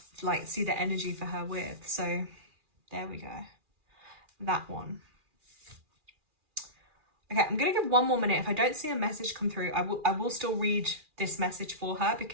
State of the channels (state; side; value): late; left; 2.4 ms